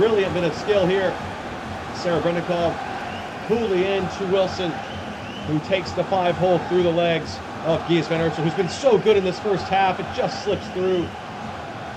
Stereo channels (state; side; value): identical; both; correlation 1.00